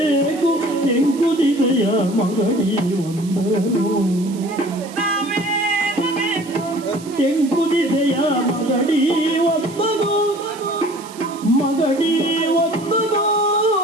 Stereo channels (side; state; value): right; noise; hiss, 19 dB below the sound